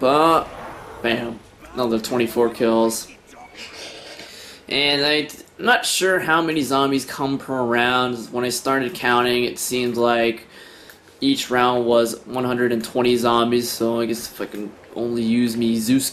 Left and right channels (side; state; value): both; identical; correlation 1.00